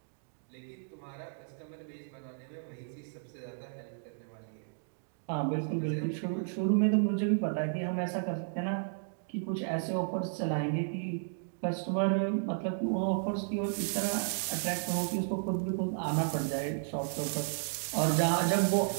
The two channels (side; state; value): left; silent; digital silence